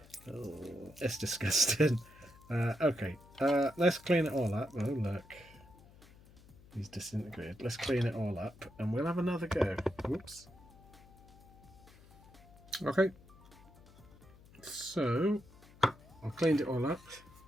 Oh, it's disgusting. Okay, let's clean it all up. Oh, look. He's disintegrated. Let's clean it all up and we'll have another go. Whoops. Okay. So, I've cleaned it all up.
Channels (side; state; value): left; noise; hum, 23 dB below the sound